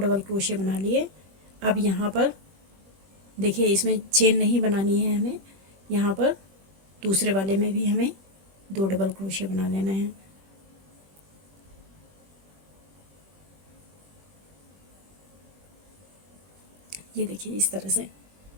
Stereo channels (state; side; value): late; left; 21 ms